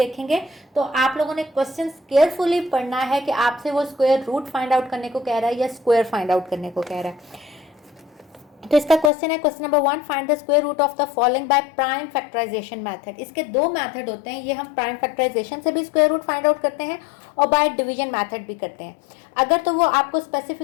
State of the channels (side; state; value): right; drops out; at 9.1 s